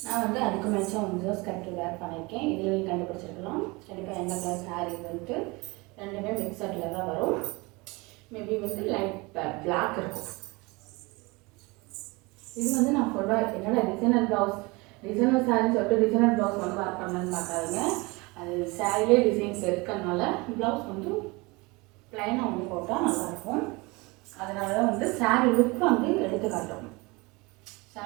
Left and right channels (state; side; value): quieter; left; 25.3 dB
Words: நான் வந்து அதுக்கு மேட்சாக வந்து ஸ்கர்ட் வேர் பண்ணியிருக்கேன். இதில் நீங்கள் கண்டுபிடிச்சிருக்கலாம். கண்டிப்பாக எந்த கலர் சாரீ வந்துட்டு ரெண்டுமே மிக்சடில் தான் வரும். மேபி வந்து லைட் பிளாக் இருக்கும். இது வந்து நான் ஃபுல்லாக என்னோட டிசைனர் ப்ளவுஸ், டிசைனர் சாரின்னு சொல்லிட்டு டிசைனர் ப்ளவுஸ் வந்து வேர் பண்ணலன்னு பார்க்காதீங்க. அது சாரிலே டிசைன்ஸ் இருக்கிறதுனால ப்ளவுஸ் வந்து ப்ளைனாக வந்து போட்டால் நல்லாயிருக்கும். அதனால தான் வந்து சாரீ லுக் வந்து எடுத்து காட்டும்.